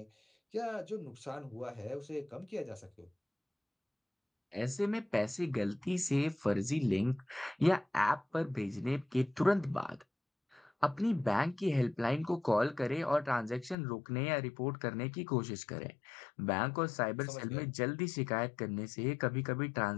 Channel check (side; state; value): right; drops out; at 13.8 s